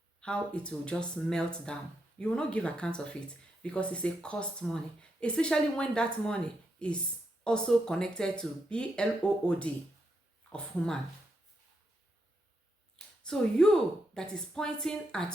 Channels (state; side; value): normal; both; correlation 0.82